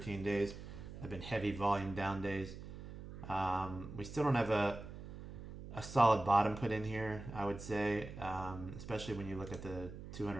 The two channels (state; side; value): noise; right; hum, 11 dB below the sound